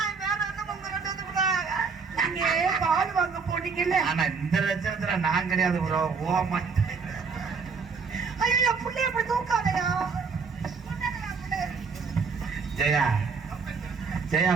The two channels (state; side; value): quieter; left; 5.2 dB